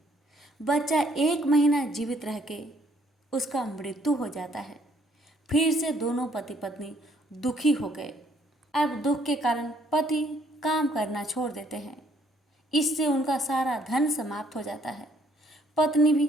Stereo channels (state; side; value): normal; both; correlation 0.66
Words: बच्चा 1 महीना जीवित रह के उसका मृत्यु हो जाता है। फिर से दोनों पति पत्नी दुखी हो गए। अब दुख के कारण पति काम करना छोड़ देते हैं। इससे उनका सारा धन समाप्त हो जाता है। पत्नी भी